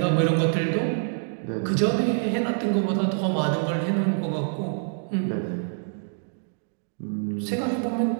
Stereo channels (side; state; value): left; silent; 61 dB below the other